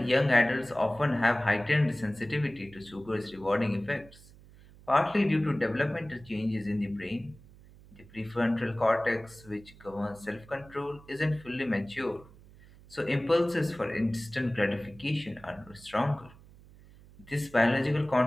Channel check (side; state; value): right; noise; hum, 23 dB below the sound